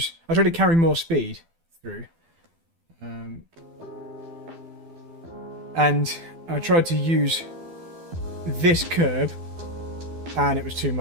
carry more speed through. And I tried to use this curb, and it was too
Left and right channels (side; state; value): left; late; 12 ms